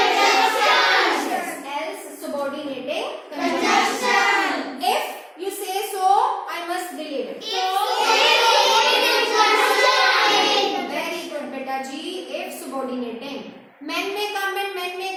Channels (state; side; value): identical; both; correlation 1.00